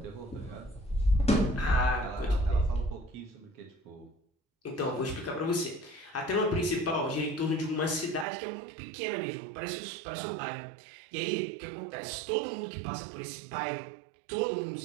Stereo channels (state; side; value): drops out; left; at 8.2 s